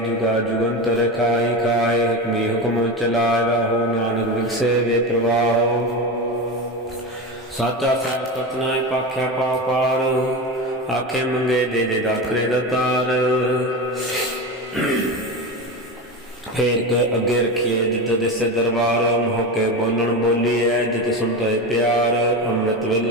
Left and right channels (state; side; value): normal; both; correlation 0.22